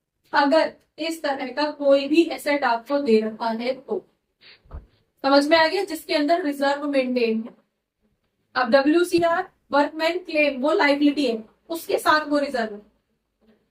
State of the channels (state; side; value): identical; both; correlation 1.00